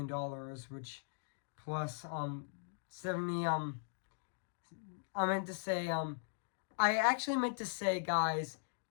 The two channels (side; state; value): right; silent; digital silence